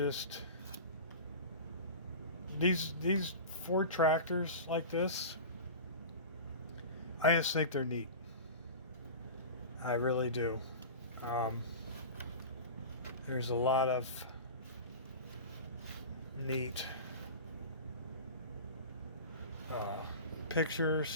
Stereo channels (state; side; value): inverted; both; correlation -0.32